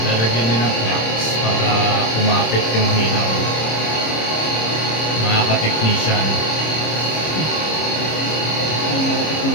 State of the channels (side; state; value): right; late; 26 ms